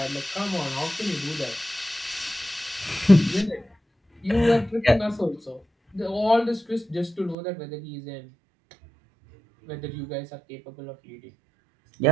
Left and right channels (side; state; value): left; drops out; at 7.4 s